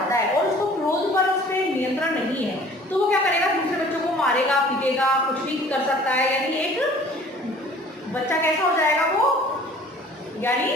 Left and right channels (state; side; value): normal; both; correlation 0.50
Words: है और उसको क्रोध पर उस पर नियंत्रण नहीं है, तो वो क्या करेगा, दूसरे बच्चों को मारेगा, पीटेगा, कुछ भी कर सकता है। यानी एक बच्चा कैसा हो जाएगा वो,